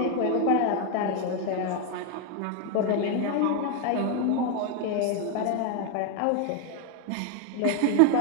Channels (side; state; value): both; different; correlation 0.01